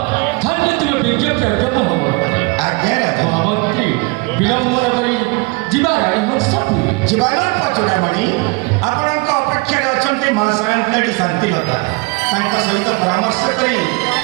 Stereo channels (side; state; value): left; quieter; 27.9 dB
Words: ধন্য তুমি বিজ্ঞপ্রাজ্ঞ মহামন্ত্রী ଆଜ୍ଞା ରାଜା মহামন্ত্রী বিলম্বন କରି ଯିବା ରାଣୀ ହଂସପୁରୀ ଜୀବାନର ପଚୁଡ଼ାମଣି ଆପଣଙ୍କ ଅପେକ୍ଷାରେ ଅଛନ୍ତି ମା ସାନ୍ତାଣୀ ଶାନ୍ତିଲତା ତାଙ୍କ ସହିତ ପରାମର୍ଶ କରି